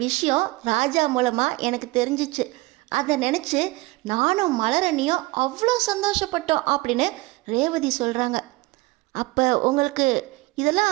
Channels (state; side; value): quieter; left; 21.8 dB